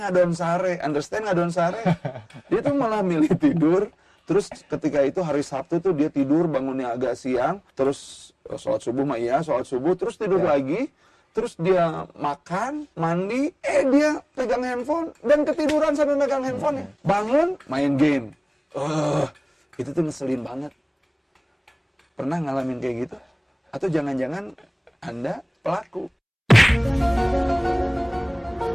sare, understand ngadon sare. Dia tuh malah milih tidur. Terus ketika itu hari Sabtu tuh dia tidur bangunnya agak siang, terus sholat subuh sholat subuh, terus tidur lagi, terus dia makan, mandi, dia pegang handphone dan ketiduran sambil megang handphone. Bangun, main game. Itu tuh ngeselin banget. Pernah ngalamin kayak gitu? Atau jangan-jangan Anda pelaku?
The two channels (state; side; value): identical; both; correlation 1.00